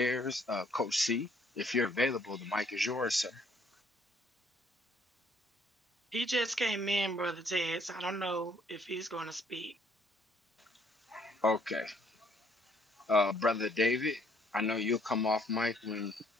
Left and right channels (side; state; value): both; normal; correlation 0.65